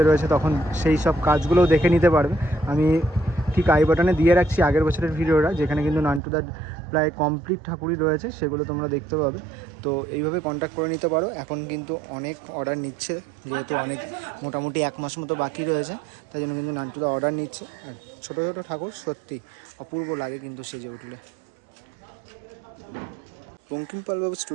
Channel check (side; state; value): left; drops out; at 6.2 s